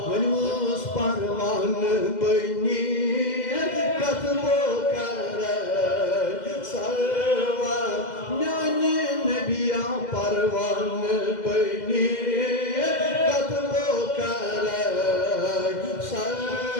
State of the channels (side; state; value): right; late; 2.0 ms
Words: वनुस परवान बनी कतबो कर सरवा म्याने नबिया परवान बनी